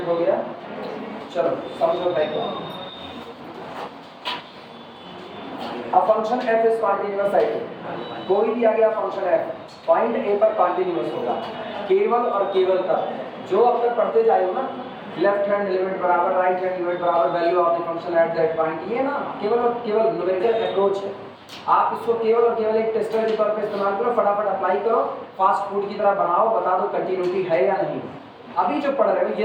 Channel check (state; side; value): identical; both; correlation 1.00